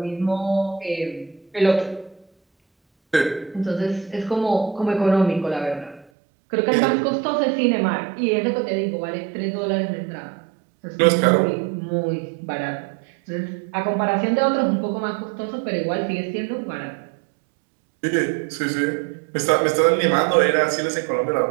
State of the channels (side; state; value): left; drops out; at 6.1 s